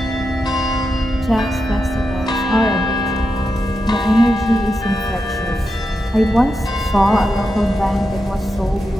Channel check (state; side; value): normal; both; correlation 0.88